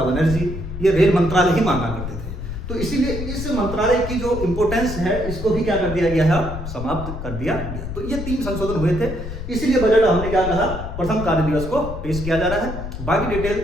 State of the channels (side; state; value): left; noise; rumble, 7 dB below the sound